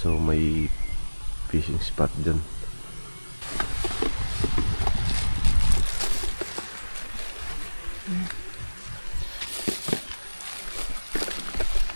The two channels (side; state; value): both; inverted; correlation -1.00